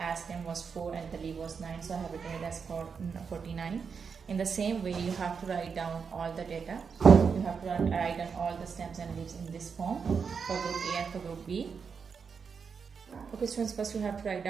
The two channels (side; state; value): left; quieter; 6.0 dB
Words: stem was 4 and the leaf was 9, so I have written it as 49. In the same way, you have to write down all the data. You have to write down all the stems and leaves in this form for group A and for group B. Okay students, first you have to write